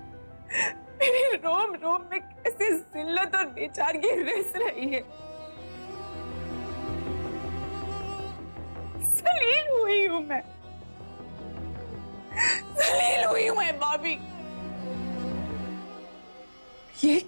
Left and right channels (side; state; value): both; inverted; correlation -1.00